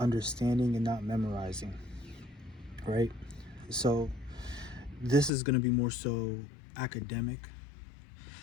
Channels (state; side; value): drops out; right; at 5.3 s